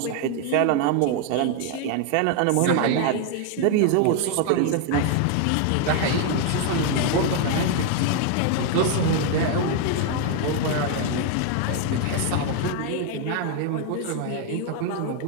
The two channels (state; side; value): different; both; correlation 0.01